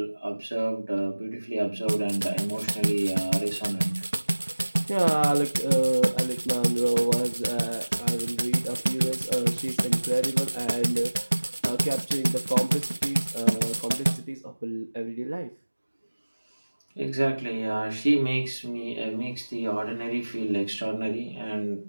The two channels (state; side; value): inverted; both; correlation -1.00